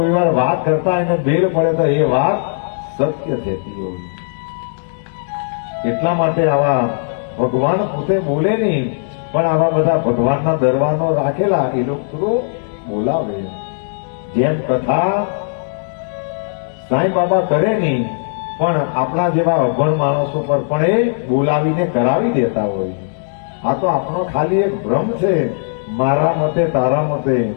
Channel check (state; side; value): silent; right; digital silence